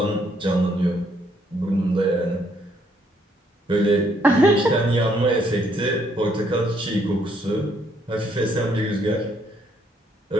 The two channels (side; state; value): both; normal; correlation 0.70